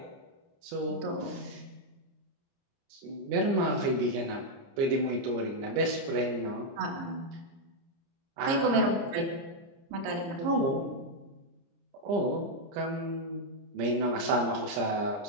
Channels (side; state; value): left; late; 29 ms